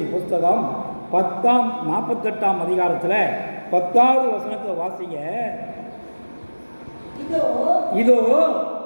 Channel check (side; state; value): both; inverted; correlation -1.00